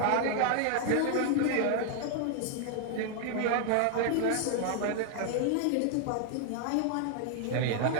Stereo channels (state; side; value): different; both; correlation 0.00